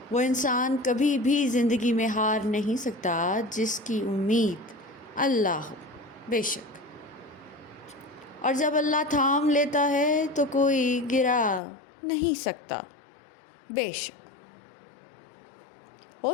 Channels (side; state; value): right; drops out; at 11.6 s